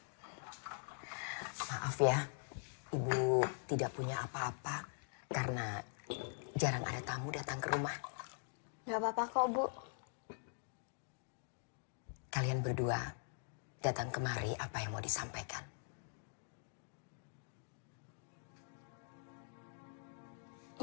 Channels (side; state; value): right; silent; digital silence